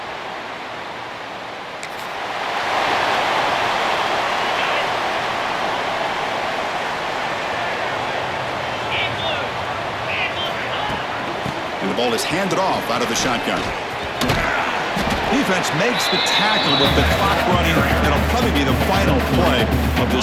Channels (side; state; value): both; identical; correlation 1.00